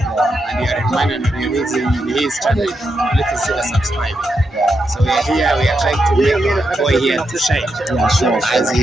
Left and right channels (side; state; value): both; normal; correlation 0.84